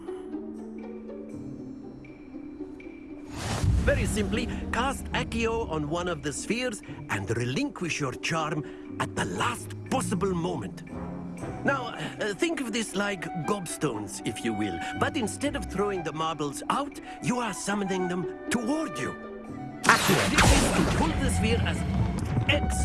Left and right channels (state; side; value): identical; both; correlation 1.00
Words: Very simply, cast Accio on one of the spheres and relinquish your charm at the last possible moment. Now, think of this like gobstones, if you will, but instead of throwing the marbles out, you are summoning them toward you. Accio, this is to pull the sphere as